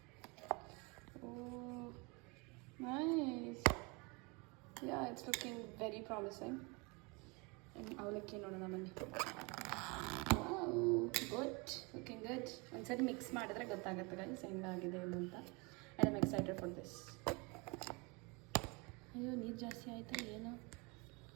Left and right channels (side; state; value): left; quieter; 28.8 dB